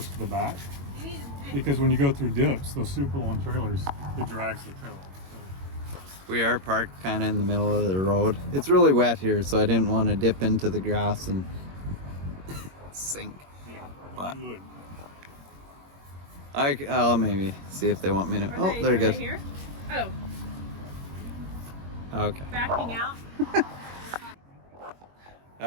to the back. Because when you go through dips, those super long trailers, it drags the tail. We are parked kind of in the middle of the road. It's really wet here, so I didn't want to dip into the grass and sink. But Good. I'll maybe see if they want me to. Are Oh, they, they're are good. They here? Oh, Okay. backing out.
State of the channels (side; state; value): left; late; 21 ms